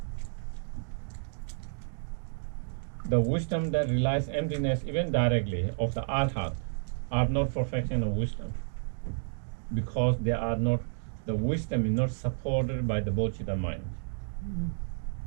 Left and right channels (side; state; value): left; silent; digital silence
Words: The wisdom that realizes emptiness, even directly, of the arhat, are not perfection of wisdom, because they are not. The wisdom is not supported by the bodhicitta mind.